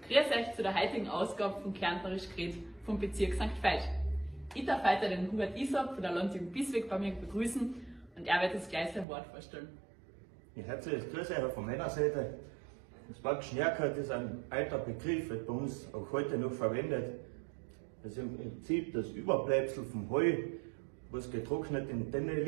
Grüß euch zu der heutigen Ausgabe von Kärntnerisch geredet vom Bezirk St. Veit. Ich darf heute den Hubert Isab von der Landjugend Bisweg bei mir begrüßen und er wird uns gleich sein Wort vorstellen. Ja, herzliches Grüß euch von meiner Seite. Das Wort Schnärkert ist ein alter Begriff, wird bei uns auch heute noch verwendet. Das ist im Prinzip das Überbleibsel vom Heu, was getrocknet in Tenne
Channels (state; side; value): drops out; left; at 9.1 s